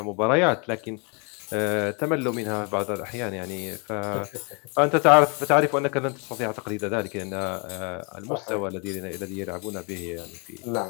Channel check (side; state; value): right; quieter; 34.1 dB